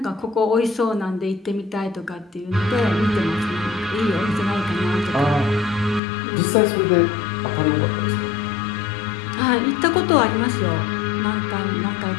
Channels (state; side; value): drops out; right; at 6.0 s